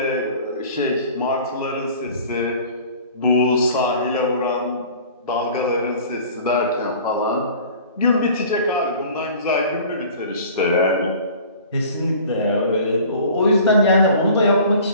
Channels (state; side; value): inverted; both; correlation -0.45